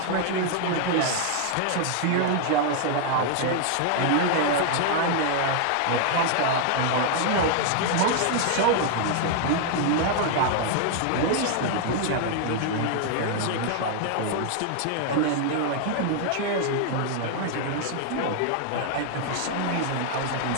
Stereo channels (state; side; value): different; both; correlation 0.00